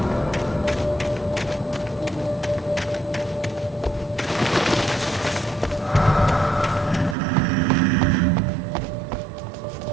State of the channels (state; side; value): drops out; left; at 7.2 s